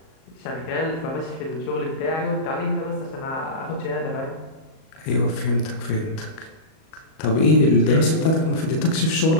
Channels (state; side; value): late; right; 38 ms